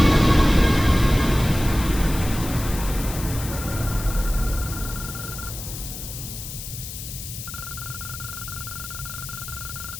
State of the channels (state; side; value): noise; left; hiss, 10 dB below the sound